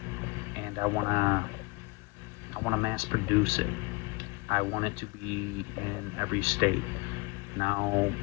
and I want to mass produce it. I want it to be in every state. Now,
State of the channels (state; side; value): quieter; right; 27.9 dB